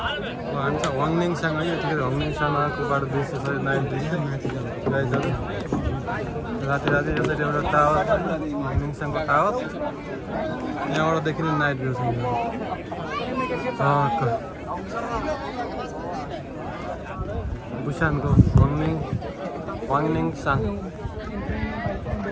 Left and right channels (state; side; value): identical; both; correlation 1.00